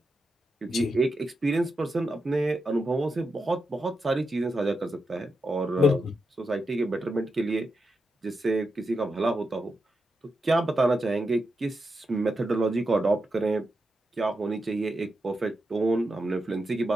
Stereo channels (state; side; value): normal; both; correlation 0.87